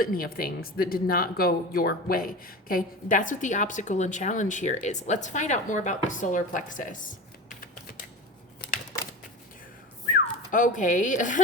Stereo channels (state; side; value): normal; both; correlation 0.30